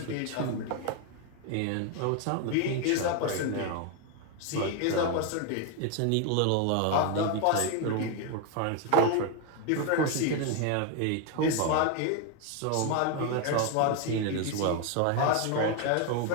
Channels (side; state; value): both; different; correlation 0.01